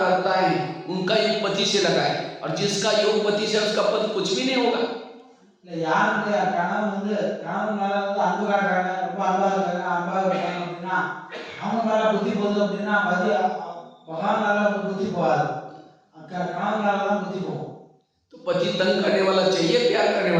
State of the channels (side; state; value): both; identical; correlation 1.00